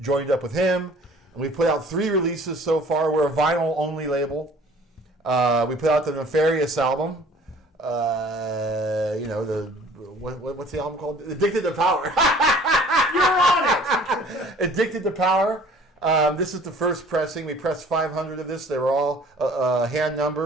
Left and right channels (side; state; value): both; normal; correlation 0.51